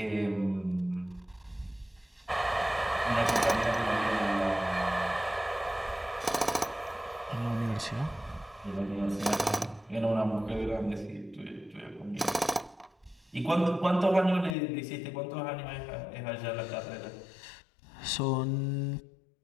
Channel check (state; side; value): drops out; right; at 14.6 s